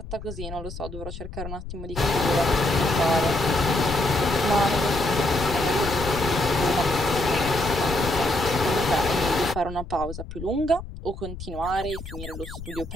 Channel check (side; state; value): left; noise; rumble, 11 dB below the sound